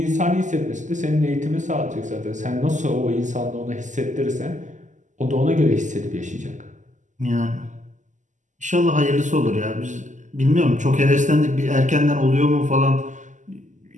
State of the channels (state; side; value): late; left; 0.36 ms